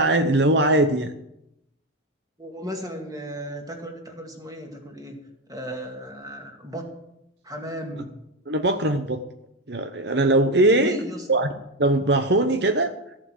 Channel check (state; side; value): normal; both; correlation 0.11